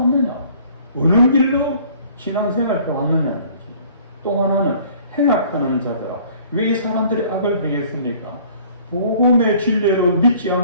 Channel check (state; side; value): inverted; both; correlation -0.54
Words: 어느 길로 신앙생활 왔느냐는 또 하나는 행악하는 자들아. 왜 이 사람들이 악을 행했습니까? 복음의 진리로 믿지